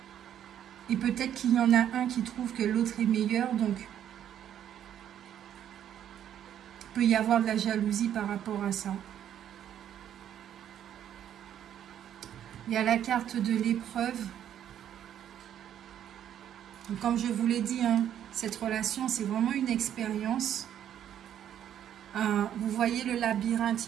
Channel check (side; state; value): left; quieter; 10.2 dB